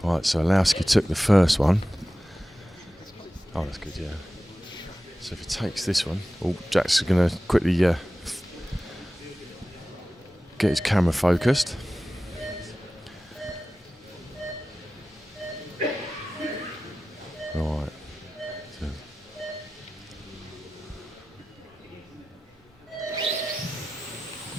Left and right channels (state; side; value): normal; both; correlation 0.95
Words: Right, so Orlowski took the first one. Oh, that's good, yeah. So if he takes this one, Jack's going to quickly get his camera focused. Right.